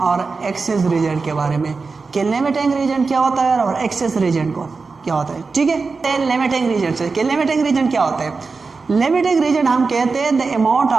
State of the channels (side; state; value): left; quieter; 4.4 dB